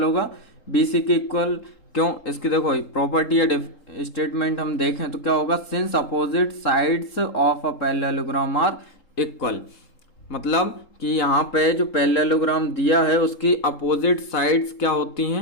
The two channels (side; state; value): right; late; 3.8 ms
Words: होगा, बी सी के इक्वल। क्यों, इसकी देखो प्रॉपर्टी या स्टेटमेंट हम देखें तो क्या होगा, since opposite sides of a parallelogram are equal. मतलब कि यहाँ पे जो पैरेललोग्राम दिया है उसकी अपोजिट साइड्स क्या होती